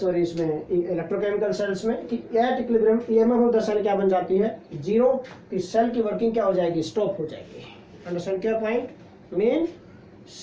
इसमें इलेक्ट्रोकेमिकल सेल्स में, कि at equilibrium EMF of the cell क्या बन जाती है, जीरो। कि सेल की वर्किंग क्या हो जाएगी, स्टॉप हो जाएगी। अंडरस्टैंड क्या पॉइंट, मीन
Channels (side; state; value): both; identical; correlation 1.00